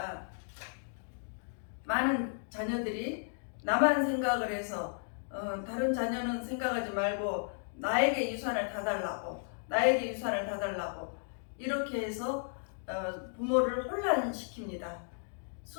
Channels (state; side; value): silent; right; digital silence